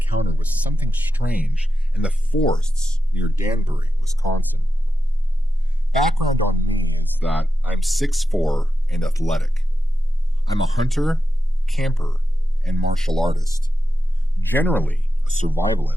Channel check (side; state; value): both; normal; correlation 0.90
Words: with something strange in the forests near Danbury, Wisconsin. Background on me is that I'm 6'4" and athletic. I'm a hunter, camper, and martial artist. Generally, a